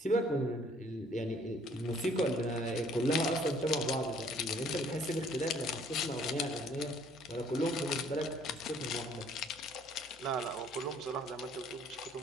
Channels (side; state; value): both; normal; correlation 0.60